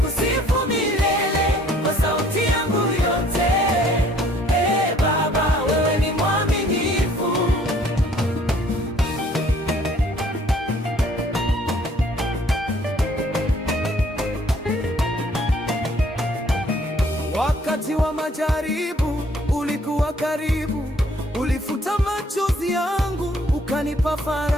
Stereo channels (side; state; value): both; normal; correlation 0.60